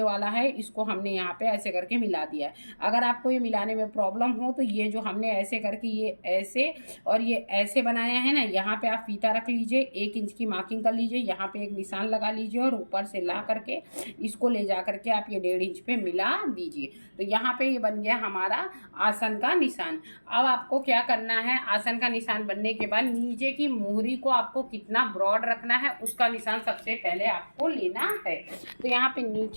वाला है इसको हमने यहाँ पे ऐसे करके मिला दिया है। अगर आपको ये मिलाने में प्रॉब्लम हो तो ये जो हमने ऐसे करके ये ऐसे और ये ऐसे बनाया है ना, यहाँ पे आप फीता रख लीजिए, 1 इंच की मार्किंग कर लीजिए, यहाँ पे एक निशान लगा लीजिए और ऊपर से ला करके इसको ले जा करके आप ये 1.5 इंच पे मिला दीजिए। तो यहाँ पे ये बन गया हमारा आसन का निशान। अब आपको क्या करना है, आसन का निशान बनने के बाद नीचे की मोहरी को आपको कितना ब्रॉड रखना है उसका निशान सबसे पहले आपको लेना है। तो यहाँ पे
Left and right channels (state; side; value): inverted; both; correlation -1.00